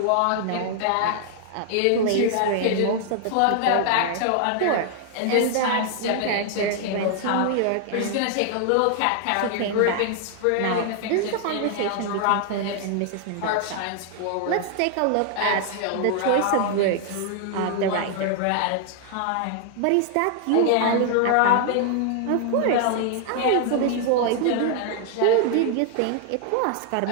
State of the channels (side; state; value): both; different; correlation 0.00